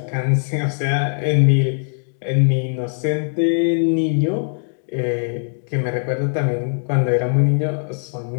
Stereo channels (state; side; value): silent; right; digital silence